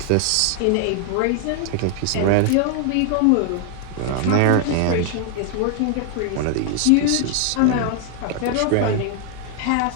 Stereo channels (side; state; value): both; different; correlation 0.00